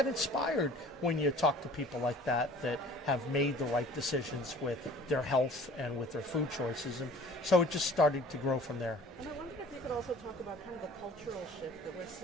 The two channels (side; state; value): both; normal; correlation 0.48